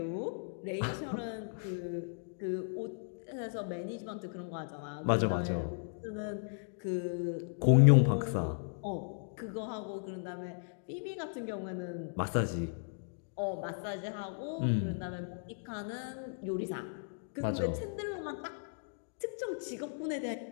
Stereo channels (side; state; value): right; silent; digital silence